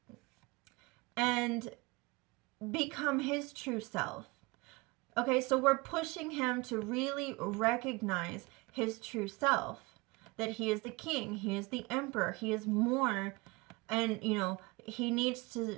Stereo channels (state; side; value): quieter; left; 24.8 dB